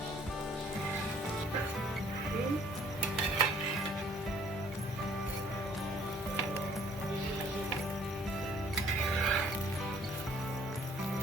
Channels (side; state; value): both; normal; correlation 0.59